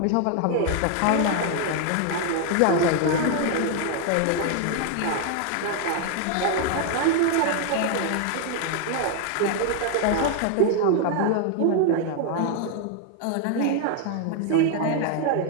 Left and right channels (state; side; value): different; both; correlation 0.00